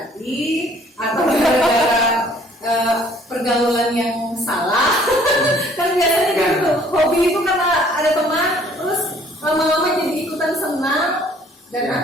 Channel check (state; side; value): normal; both; correlation 0.58